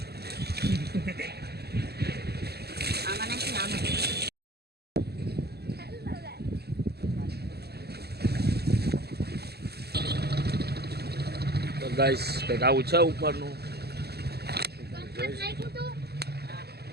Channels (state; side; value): late; left; 0.47 ms